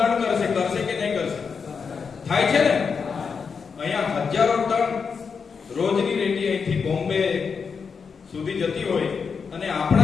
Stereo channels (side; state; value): right; quieter; 5.8 dB